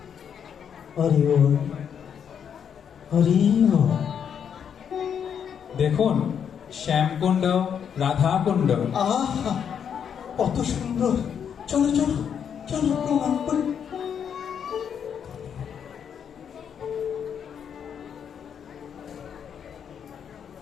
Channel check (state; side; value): quieter; right; 7.9 dB